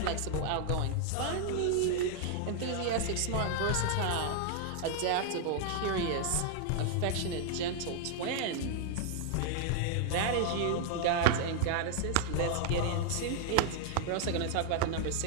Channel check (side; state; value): both; different; correlation 0.00